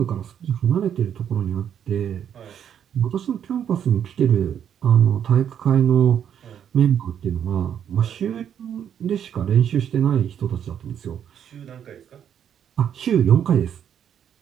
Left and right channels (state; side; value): quieter; left; 9.0 dB